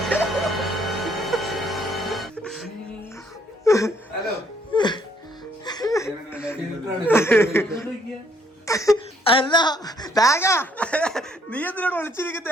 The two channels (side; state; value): both; normal; correlation 0.67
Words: ഹലോ, അല്ല നീ എന്തിനോട്